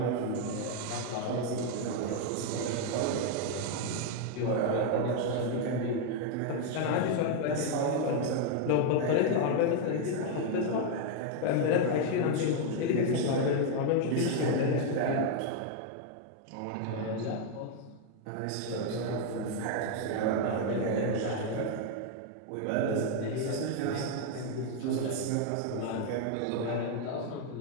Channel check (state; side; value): different; both; correlation 0.00